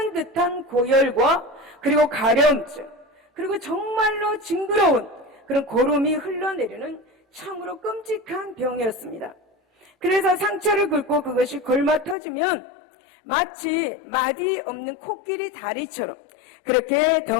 듯한 고열과 그리고 가려움증, 그리고 정말로 징그러운 그런 고름이 흘러내리는 참으로 끔찍한 병이었습니다. 그래서 상처를 긁고 그것이 골마 터지면 마치 마디 없는 코끼리 다리처럼 그렇게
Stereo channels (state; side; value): drops out; right; at 12.2 s